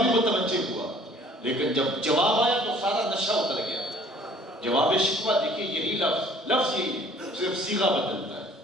بھی متوجہ ہوا، لیکن جب جواب آیا تو سارا نشہ اتر گیا۔ جواب شکوہ دیکھیے یہی لفظ یہی صرف صیغہ بدلتا ہے۔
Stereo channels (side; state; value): both; normal; correlation 0.55